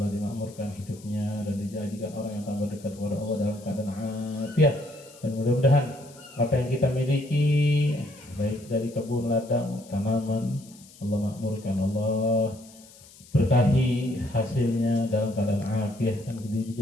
dimakmurkan hidupnya dan dijadikan orang yang tambah dekat kepada Allah dalam keadaan afiat. Dan mudah-mudahan apa yang kita miliki baik dari kebun, ladang, tanaman, Allah makmurkan, Allah berkahi hasilnya dalam keadaan afiat, dan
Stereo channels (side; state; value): left; noise; hiss, 23 dB below the sound